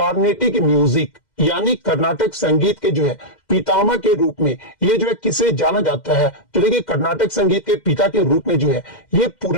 music, यानी कर्नाटक संगीत के जो है पितामह के रूप में ये जो है किसे जाना जाता है? तो देखिए कर्नाटक संगीत के पिता के रूप में जो है ये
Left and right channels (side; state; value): right; late; 2.1 ms